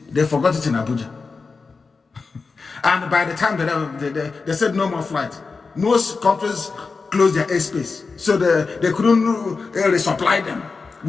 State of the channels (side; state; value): right; quieter; 4.5 dB